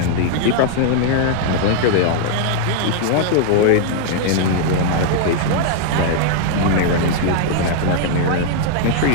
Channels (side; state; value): both; different; correlation 0.00